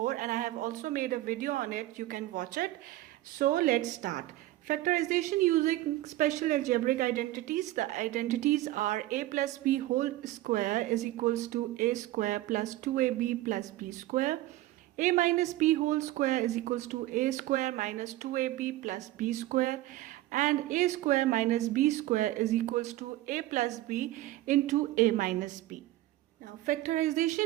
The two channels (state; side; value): quieter; left; 16.1 dB